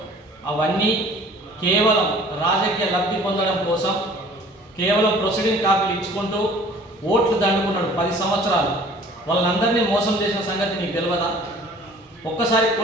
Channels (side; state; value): both; normal; correlation 0.50